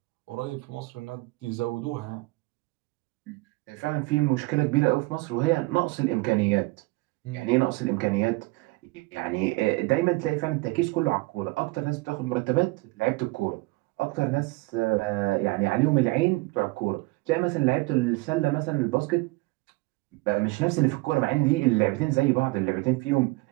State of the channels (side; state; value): left; quieter; 23.3 dB